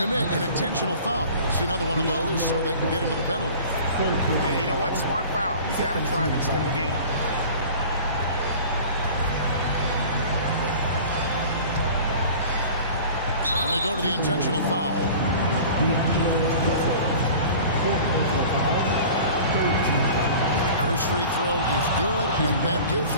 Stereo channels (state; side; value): inverted; both; correlation -0.42